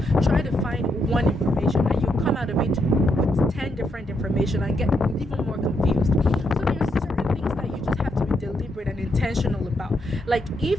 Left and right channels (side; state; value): both; normal; correlation 0.79